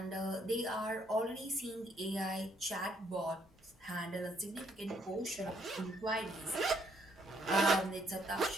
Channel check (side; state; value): both; normal; correlation 0.69